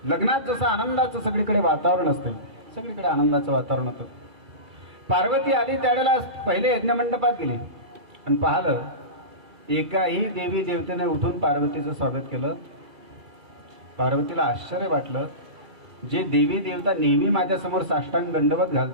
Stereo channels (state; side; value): late; left; 2.3 ms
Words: लग्नात जसं आनंदाचं सगळीकडे वातावरण असते, सगळीकडे आनंदाचं वातावरण होतं। पार्वती आली त्यावेळेला पहिले यज्ञ मंडपात गेली आणि पाहिलं एकाही देवी देवतेने उठून पार्वतीचं स्वागत केलं। पार्वतीला आश्चर्य वाटलं, जे देवी देवता नेहमी माझ्यासमोर साष्टांग दंडवत